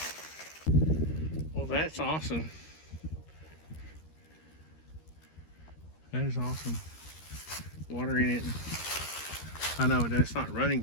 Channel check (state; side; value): late; right; 13 ms